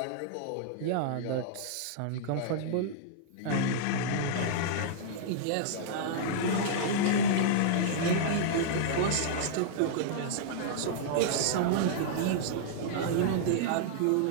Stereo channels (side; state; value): both; different; correlation -0.02